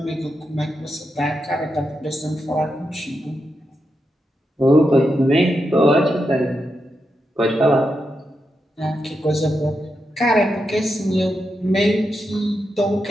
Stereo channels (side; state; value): both; normal; correlation 0.86